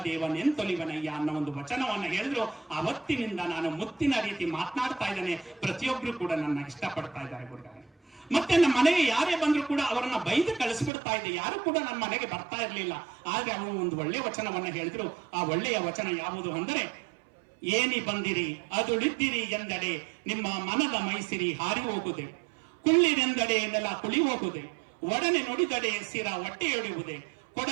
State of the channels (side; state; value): left; drops out; at 10.9 s